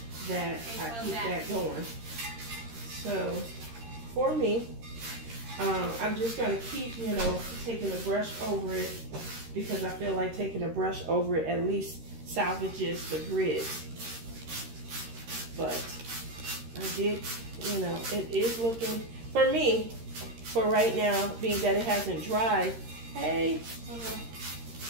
that I keep that going. So for me, I'm just going to keep, you know, taking a brush over it, because I feel like taking a brush over it at least salvages the grid. But I did, you know, it is looking, for me, for right now, being that it hasn't dried. Hey,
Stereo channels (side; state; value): left; late; 13 ms